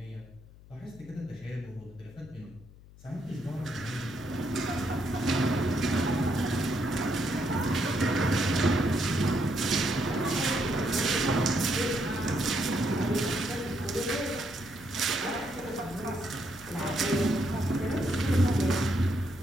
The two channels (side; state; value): left; noise; hum, 21 dB below the sound